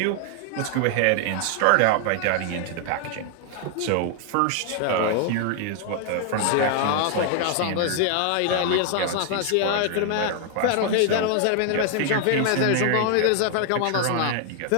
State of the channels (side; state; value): both; different; correlation 0.00